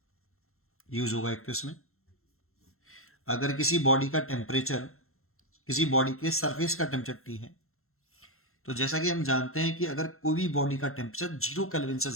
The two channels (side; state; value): right; late; 0.62 ms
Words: यूज होगा एक तो इसमें। अगर किसी बॉडी का टेम्परेचर, किसी बॉडी के सरफेस का टेम्परेचर T है, तो जैसा कि हम जानते हैं कि अगर कोई भी बॉडी का टेम्परेचर 0 केल्विन से